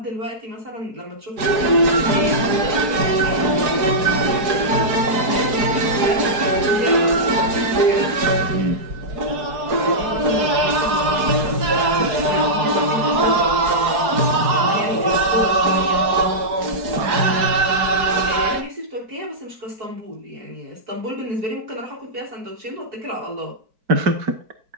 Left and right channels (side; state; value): left; late; 4.8 ms